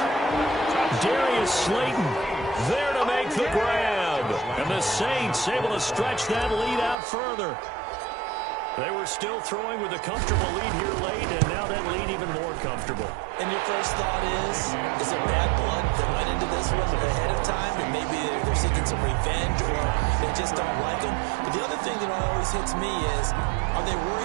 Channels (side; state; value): left; drops out; at 7.0 s